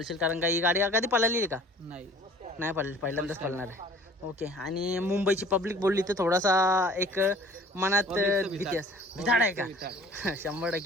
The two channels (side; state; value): both; normal; correlation 0.49